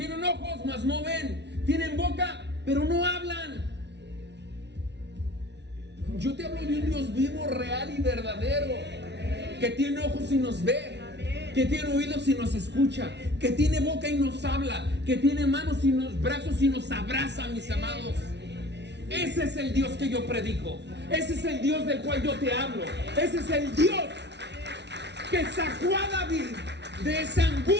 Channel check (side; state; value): left; late; 0.50 ms